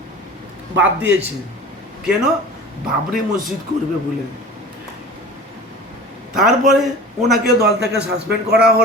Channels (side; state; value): both; normal; correlation 0.38